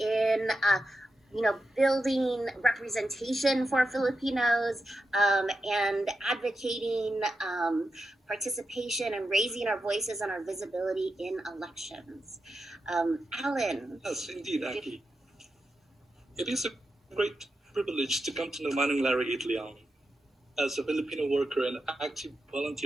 building representation for Filipinos and advocating participation and raising our voices and our visibility in elections. Alan. Yes, indeed, Aki. It is a great privilege to come to know Manang Larry Itliong. As a Filipino worker and active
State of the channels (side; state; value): both; normal; correlation 0.89